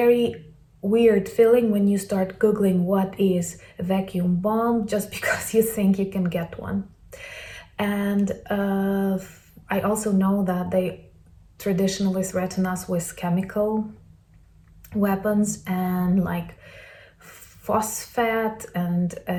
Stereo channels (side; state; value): both; identical; correlation 1.00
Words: weird feeling when you start Googling what is a vacuum bomb, just because you think you can get one. And I also know that they traditionally threaten us with chemical weapons and like phosphate and